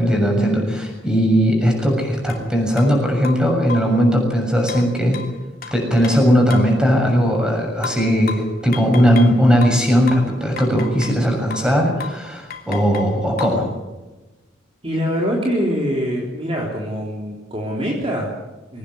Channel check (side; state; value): both; normal; correlation 0.78